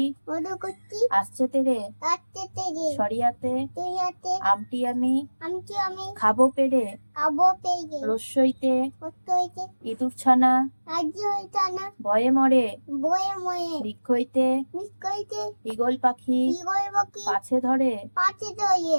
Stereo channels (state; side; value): inverted; both; correlation -1.00